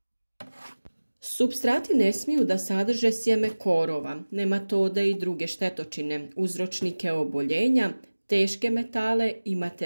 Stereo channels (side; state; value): both; inverted; correlation -1.00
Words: Supstrati ne smiju da sadrže sjeme korova, nematode i druge štetočine, uzročnike oboljenja, teške metale i